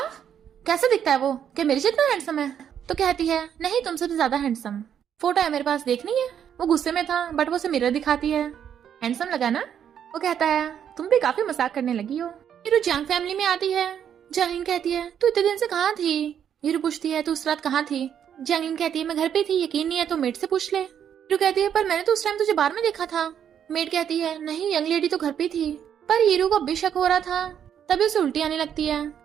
कैसे दिखता है वो? क्या मेरे जितना हैंडसम है? तो कहती है, नहीं, तुमसे भी ज्यादा हैंडसम। फोटो है मेरे पास, देखनी है? वो गुस्से में था, बट वो उसे मिरर दिखाती है। हैंडसम लगा ना? वो कहता है, तुम भी काफी मजाक करने लगी हो। हीरो जंग फैमिली में आती है। जंगलिन कहती है, तू इतने दिन से कहाँ थी? हीरो पूछती है, तू उस रात कहाँ थी? जंगलिन कहती है, मैं घर पे थी, यकीन नहीं है तो मेड से पूछ ले। हीरो कहती है, पर मैंने तो उस टाइम तुझे बाहर में देखा था। मेड कहती है, नहीं, यंग लेडी तो घर पे थी। पर हीरो को अब भी शक हो रहा था, तभी उसे उल्टी आने लगती है।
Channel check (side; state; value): left; quieter; 8.9 dB